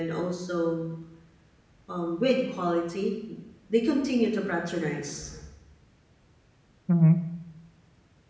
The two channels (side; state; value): both; identical; correlation 1.00